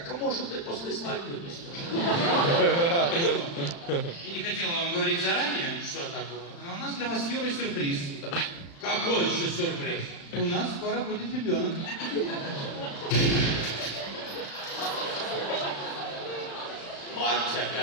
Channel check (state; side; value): late; right; 35 ms